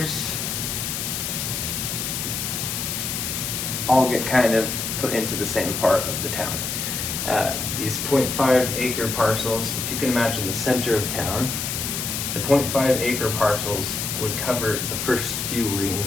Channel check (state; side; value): noise; left; hiss, 3 dB below the sound